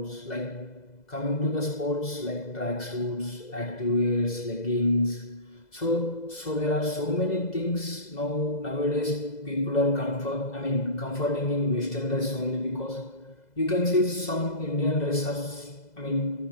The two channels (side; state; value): right; late; 2.0 ms